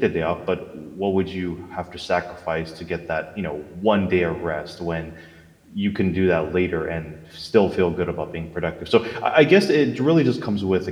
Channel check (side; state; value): both; identical; correlation 1.00